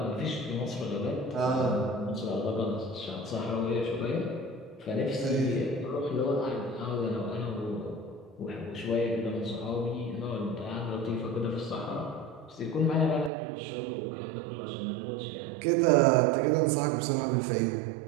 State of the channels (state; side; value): drops out; left; at 13.3 s